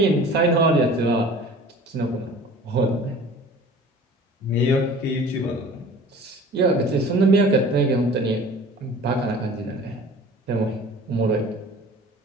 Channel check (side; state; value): both; normal; correlation 0.44